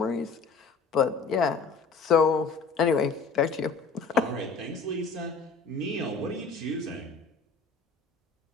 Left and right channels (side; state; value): right; quieter; 4.7 dB